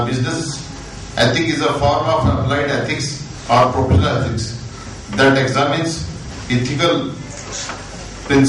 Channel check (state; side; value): identical; both; correlation 1.00